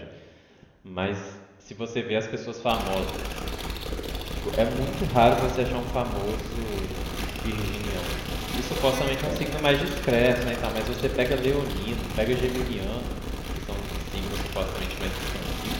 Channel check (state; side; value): identical; both; correlation 1.00